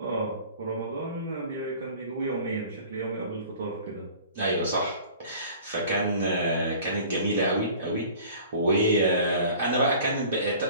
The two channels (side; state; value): both; inverted; correlation -0.45